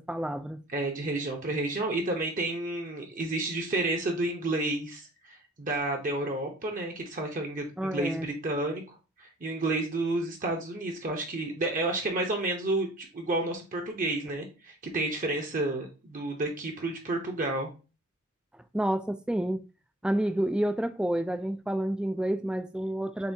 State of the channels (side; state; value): both; normal; correlation 0.53